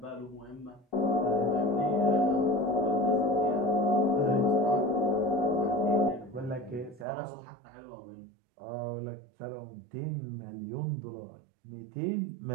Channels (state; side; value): drops out; left; at 7.1 s